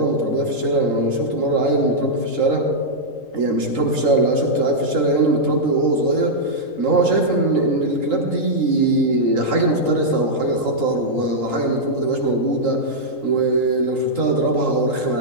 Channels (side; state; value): right; late; 3.8 ms